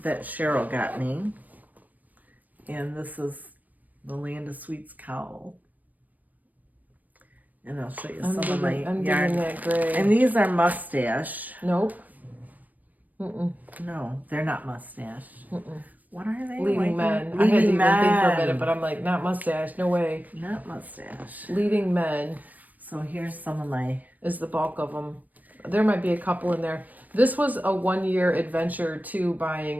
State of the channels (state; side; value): late; left; 0.080 ms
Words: that Cheryl got me. And this is the Land of Sweets cowl. And I'll show you some of my I'm yarn. digging that gray. And these are mustache. Nope. Mm-mm. No, they're not mustache. Mm-mm. What are they? Leading men. I Leading had to even men. think for a minute, but I'm like, not mustache. No way. Not mustache. Leading men So here's some of my... is the bulk of them. There might be a couple in there. This was a 1-year adventure to